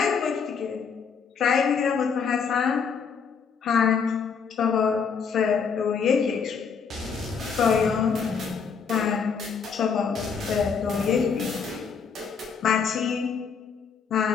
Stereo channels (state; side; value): quieter; right; 6.1 dB